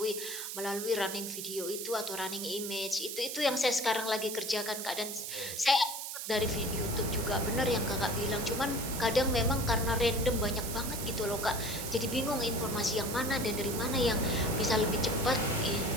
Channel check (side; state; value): right; noise; hiss, 6 dB below the sound